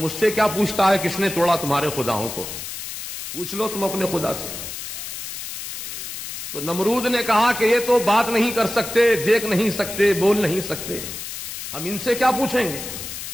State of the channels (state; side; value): noise; left; hiss, 8 dB below the sound